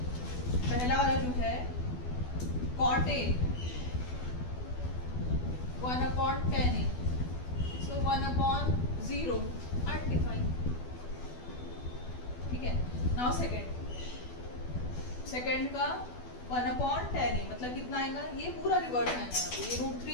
पहला वाला जो है cot A 1/10 A, so 1/0 undefined, ठीक है। नाउ सेकेंड का 1/10 ए मतलब कितना आएगा? ये पूरा रिवर्स आएगा, ये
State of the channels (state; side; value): late; right; 12 ms